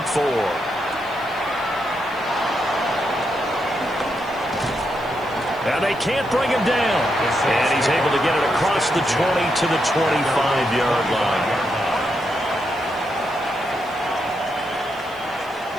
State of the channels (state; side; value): noise; right; hiss, 26 dB below the sound